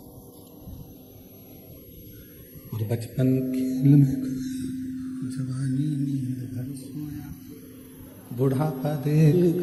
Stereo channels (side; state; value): both; identical; correlation 1.00